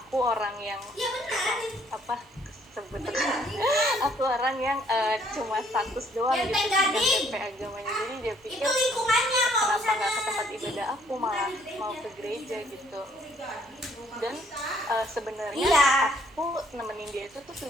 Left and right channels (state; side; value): normal; both; correlation 0.64